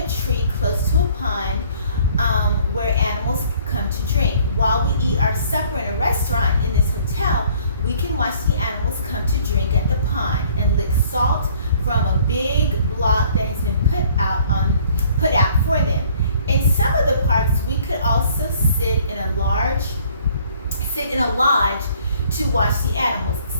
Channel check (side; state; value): both; inverted; correlation -0.58